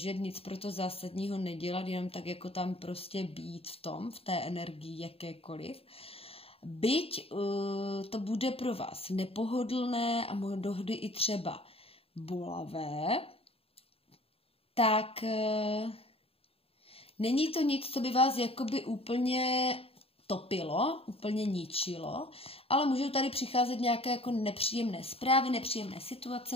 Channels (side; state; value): right; late; 0.28 ms